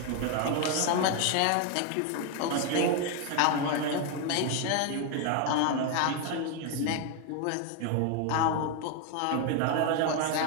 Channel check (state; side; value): different; both; correlation 0.01